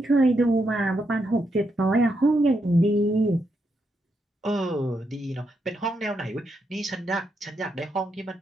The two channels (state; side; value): normal; both; correlation 0.81